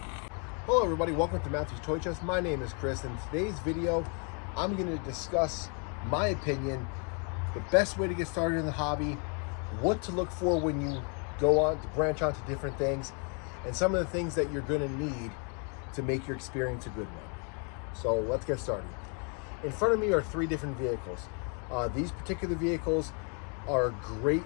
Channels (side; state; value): right; quieter; 38.1 dB